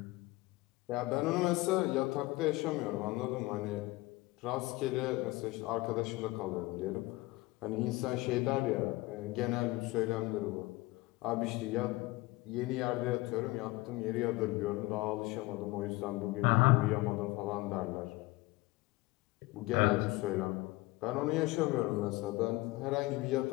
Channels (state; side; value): quieter; right; 20.8 dB